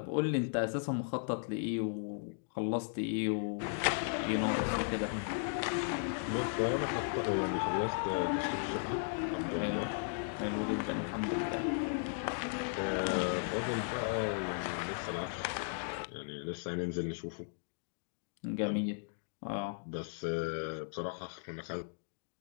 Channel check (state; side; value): silent; right; digital silence